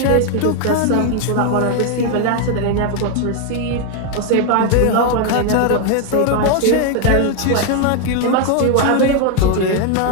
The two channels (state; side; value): different; both; correlation 0.01